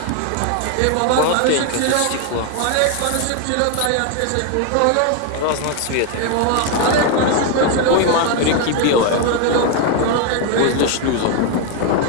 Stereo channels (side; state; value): both; different; correlation 0.01